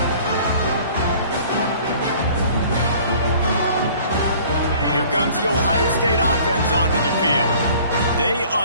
Here comes the Ohio State offense onto the field. They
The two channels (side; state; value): both; inverted; correlation -0.51